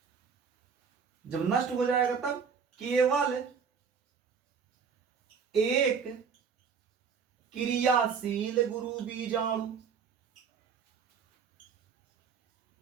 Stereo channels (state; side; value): quieter; left; 6.2 dB